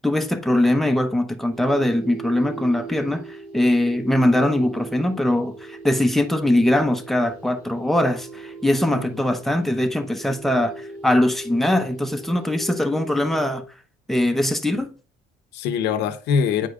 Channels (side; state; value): both; normal; correlation 0.88